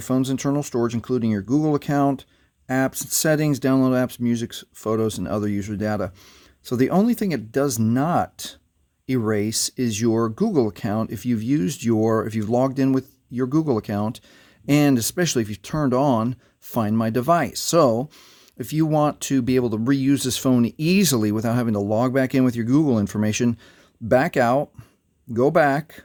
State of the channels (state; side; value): identical; both; correlation 1.00